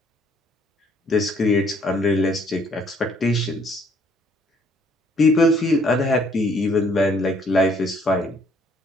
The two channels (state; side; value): normal; both; correlation 0.63